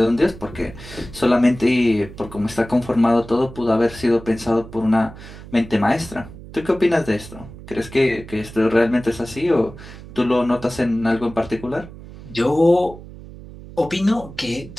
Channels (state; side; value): noise; right; hum, 16 dB below the sound